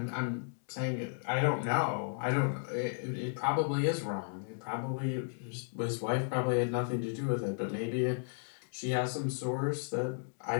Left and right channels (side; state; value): right; silent; digital silence